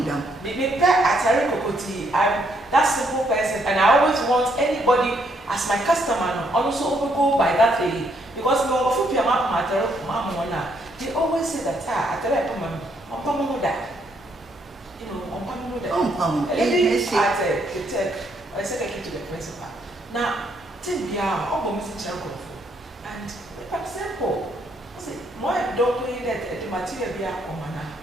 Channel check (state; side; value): normal; both; correlation 0.72